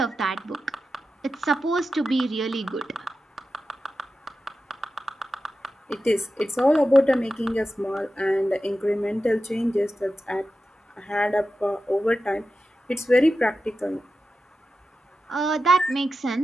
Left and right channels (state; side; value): normal; both; correlation 0.91